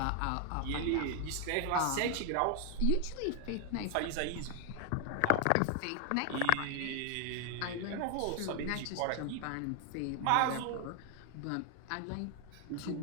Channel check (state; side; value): different; both; correlation 0.00